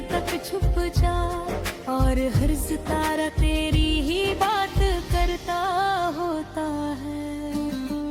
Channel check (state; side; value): identical; both; correlation 1.00